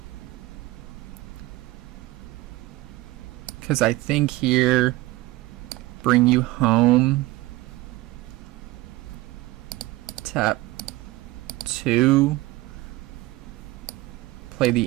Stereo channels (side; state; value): left; quieter; 18.9 dB